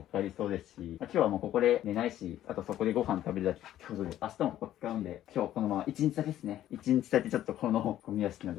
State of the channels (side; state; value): right; quieter; 12.6 dB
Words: かかりそうですし、今日はもうここで寝ないし、あとそこでご飯食べるだけってことで、明日もここ使うんで、今日このまま1日だけですね。1日だけちょっとこのゴミ屋敷の